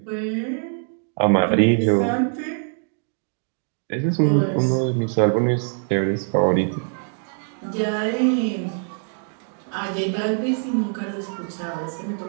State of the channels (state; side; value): silent; left; 59 dB below the other